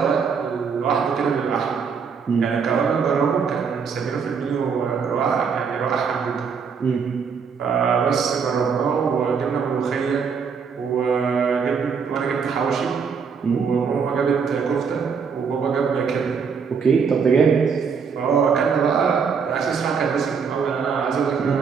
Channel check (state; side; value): quieter; left; 6.1 dB